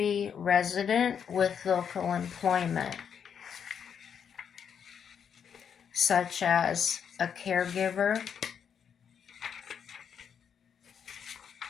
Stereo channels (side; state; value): right; quieter; 7.6 dB